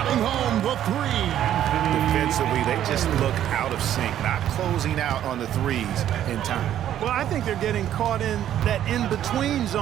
home the three. Defensively, they just look out of sync, not closing out on the threes in time. Well, I think they're getting caught in that in-between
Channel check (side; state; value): left; quieter; 11.2 dB